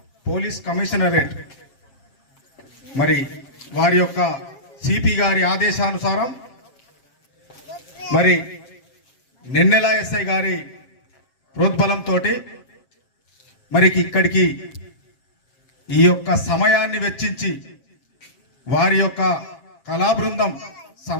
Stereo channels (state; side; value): late; right; 7.5 ms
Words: పోలీస్ కమిషనరేట్ మరి వారి యొక్క సిపి గారి ఆదేశానుసారం మరి నెన్నెల ఎస్ఐ గారి ప్రోద్బలంతో మరి ఇక్కడికి ఈ యొక్క సమయాన్ని వెచ్చించి వారి యొక్క కళాబృందం